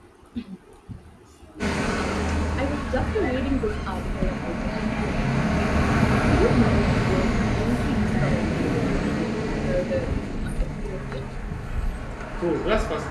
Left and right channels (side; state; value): both; identical; correlation 1.00